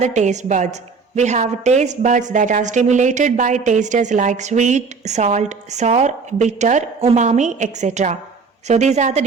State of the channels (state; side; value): quieter; left; 4.9 dB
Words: taste buds. We have taste buds that are stimulated by tastes like sweet, salt, sour, bitter, umami, etc. So these are the